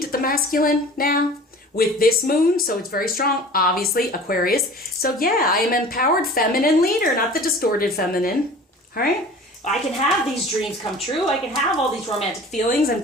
the masculine now with this moon, so it's very strong. Obviously, Aquarius. So yeah, I am empowered feminine leader, not the distorted feminine. All right? I can have these dreams come true. I can have all these romantic feelings and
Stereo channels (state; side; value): normal; both; correlation 0.43